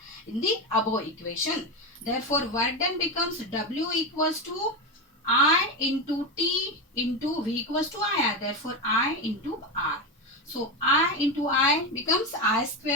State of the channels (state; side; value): normal; both; correlation 0.15